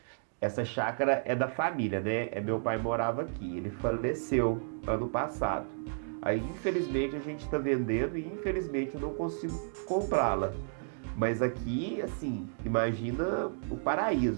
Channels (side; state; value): left; silent; digital silence